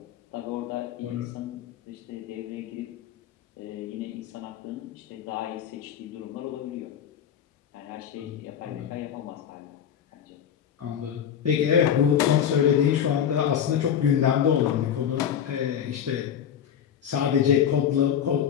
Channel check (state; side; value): quieter; right; 8.9 dB